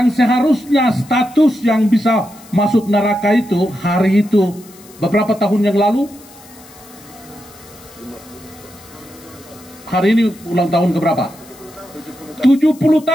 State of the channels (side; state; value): left; noise; hiss, 23 dB below the sound